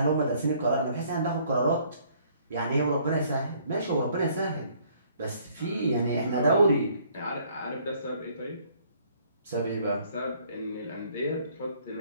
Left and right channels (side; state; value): both; inverted; correlation -0.62